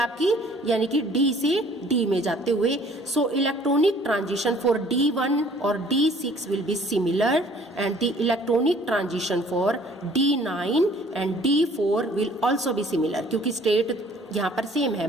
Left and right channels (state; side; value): normal; both; correlation 0.55